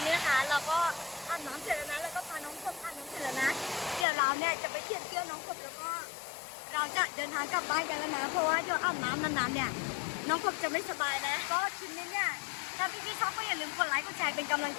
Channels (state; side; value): drops out; right; at 4.0 s